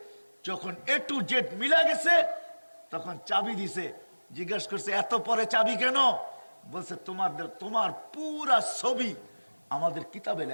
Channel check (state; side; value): inverted; both; correlation -1.00